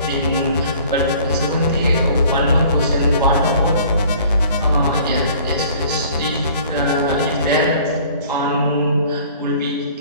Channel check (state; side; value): inverted; both; correlation -0.52